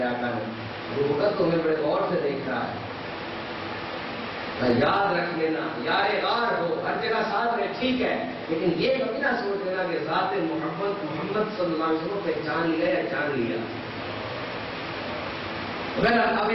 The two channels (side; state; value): both; identical; correlation 1.00